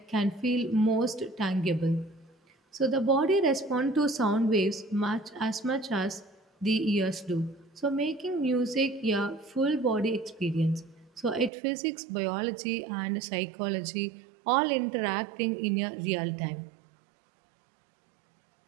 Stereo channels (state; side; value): drops out; left; at 11.5 s